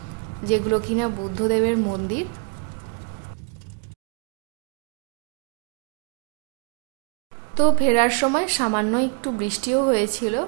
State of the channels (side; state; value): left; quieter; 38.0 dB